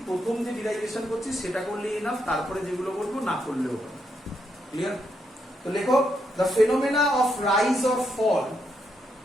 প্রথম যে ডিরাইভেশন করছি সেটা করলেই এনাফ, তারপরে যেগুলো বলবো না করলেও হবে। ক্লিয়ার? তো লেখো, the phenomena of rise or fall,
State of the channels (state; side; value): normal; both; correlation 0.79